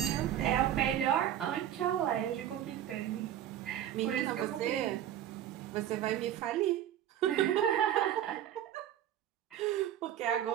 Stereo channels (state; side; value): quieter; left; 11.0 dB